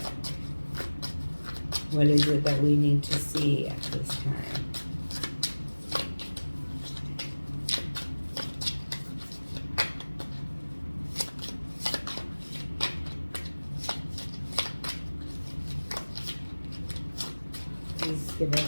What is it that we need to see at this time? Please give us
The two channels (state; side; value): inverted; both; correlation -1.00